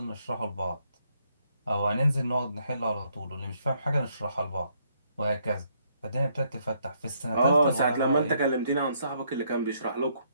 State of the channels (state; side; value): inverted; both; correlation -0.72